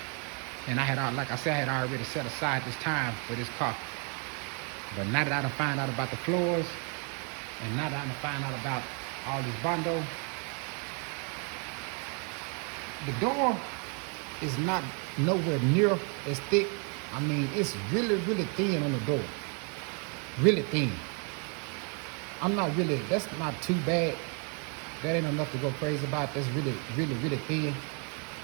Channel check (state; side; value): quieter; left; 37.5 dB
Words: And like I said, I had already set aside this time for this car. But now that I done find out about the floors, and now that I done find out about all this bondo, the door is not nowhere near as thick. I mean, it's really, really thin on the door. Really thin. That's not too bad. That ain't enough to go crazy about. That's really, really, really thin.